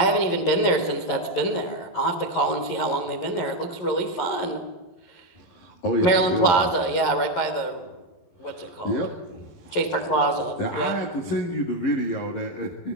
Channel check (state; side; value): late; right; 11 ms